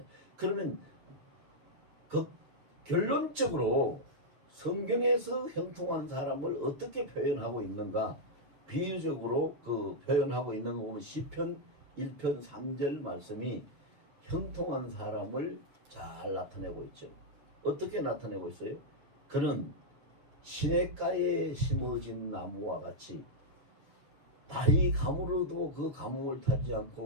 그러면 그 결론적으로 성경에서 형통한 사람을 어떻게 표현하고 있는가? 비유적으로 그 표현하고 있는 거 보면 시편 1편 3절 말씀이 형통한 사람을 잘 나타내고 있죠. 어떻게 나타내고 있어요? 그는 시냇가에 심어진 나무와 같이 달이 가물어도 그 가뭄을 타지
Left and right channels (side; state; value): left; late; 7.3 ms